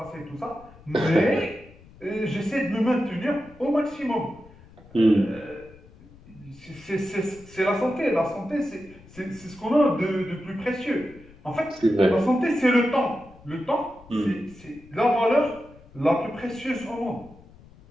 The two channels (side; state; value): left; noise; rumble, 23 dB below the sound